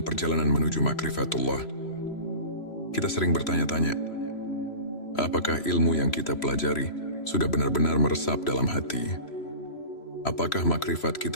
perjalanan menuju makrifatullah, kita sering bertanya-tanya, apakah ilmu yang kita pelajari sudah benar-benar meresap dalam hati? Apakah makrifat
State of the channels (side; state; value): right; late; 3.0 ms